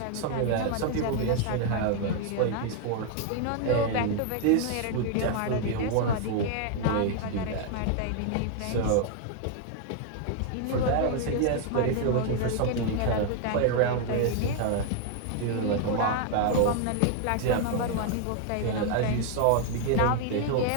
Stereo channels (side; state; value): both; different; correlation 0.00